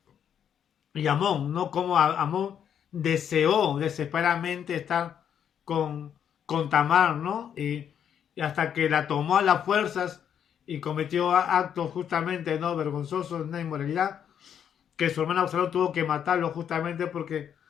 Amón, ¿no? Como Amón deseó desesperadamente estar con Tamar, ¿no? Y y hasta que la tomó a las fuerzas y cometió actos justamente no vergonzosos, de inmoralidad, que su hermano Absalón tuvo que matarlo justamente porque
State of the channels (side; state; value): right; quieter; 8.7 dB